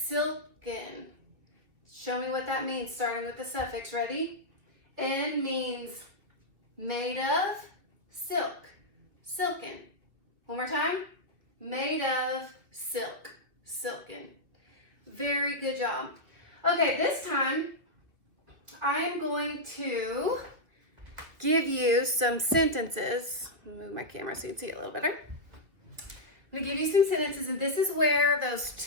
Show me what that means, starting with the suffix. Ready? N means made of silk. Silken. One more time. Made of silk. Silken. Very good job. Okay, this time I am going to give you some sentences. Move my camera so you can see it a little better. I'm going to give you some sentences, and this is where those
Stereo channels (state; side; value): late; left; 2.2 ms